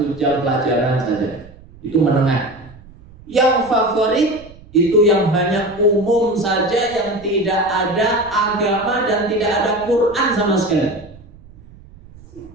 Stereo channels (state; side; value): noise; right; rumble, 22 dB below the sound